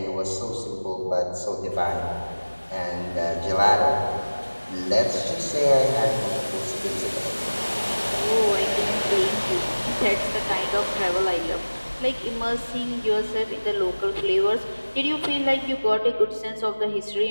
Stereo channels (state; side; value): inverted; both; correlation -1.00